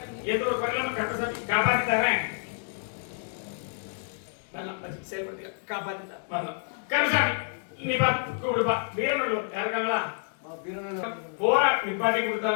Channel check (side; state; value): right; silent; digital silence